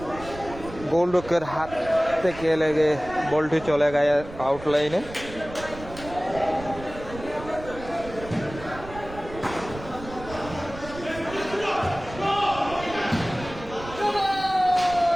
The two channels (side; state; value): right; noise; rumble, 14 dB below the sound